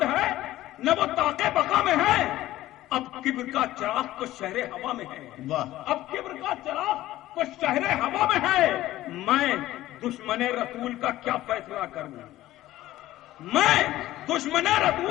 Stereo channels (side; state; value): right; quieter; 15.3 dB